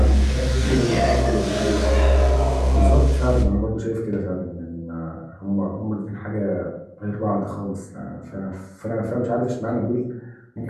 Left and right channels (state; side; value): identical; both; correlation 1.00